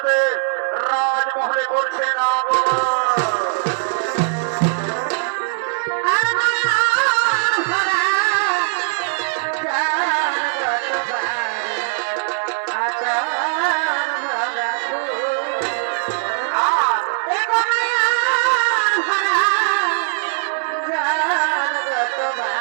রাজমহলে করছে না।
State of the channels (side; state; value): left; silent; digital silence